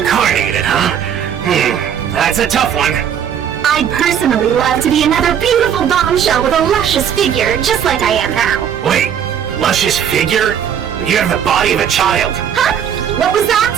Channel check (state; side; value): quieter; left; 8.7 dB